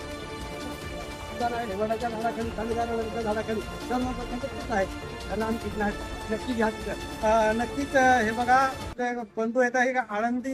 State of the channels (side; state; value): both; identical; correlation 1.00